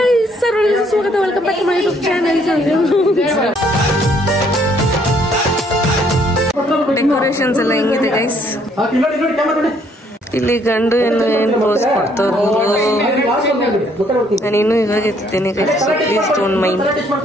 ಸ್ವಾಗತ, welcome back to my YouTube channel. Decorations ಎಲ್ಲ ಹೆಂಗಿದೆ ಗೈಸ್? ಇಲ್ಲಿ ಗಂಡು ಏನು ರೋಸ್ ಕೊಡ್ತಾರೋ ನಾನು ಇನ್ನೂ ಇವಾಗ ಎತ್ತಿದ್ದೇನೆ ಗೈಸ್. Please don't mind.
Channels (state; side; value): normal; both; correlation 0.66